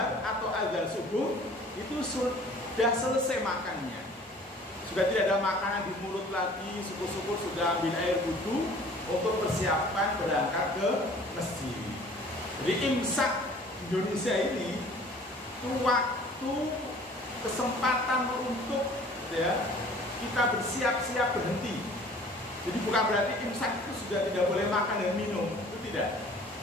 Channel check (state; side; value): normal; both; correlation 0.50